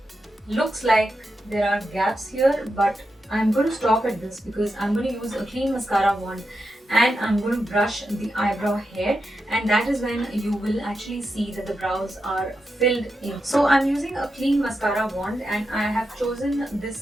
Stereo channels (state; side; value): normal; both; correlation 0.87